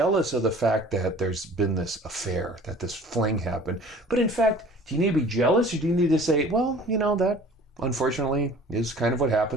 of the fact that there's been this affair, that this fling happened. But in fact, do you need to be jealous or do you need to say, well, that unfortunately is kind of what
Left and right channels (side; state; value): both; normal; correlation 0.47